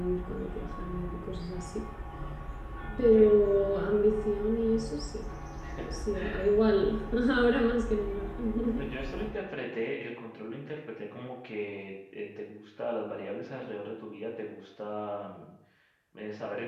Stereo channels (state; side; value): identical; both; correlation 1.00